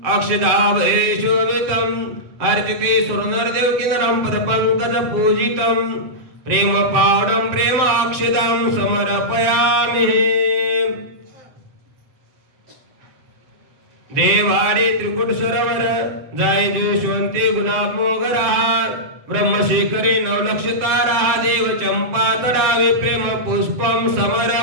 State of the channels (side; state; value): left; late; 7.6 ms